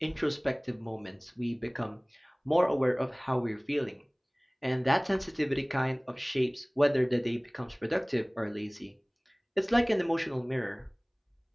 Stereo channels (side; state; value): both; identical; correlation 1.00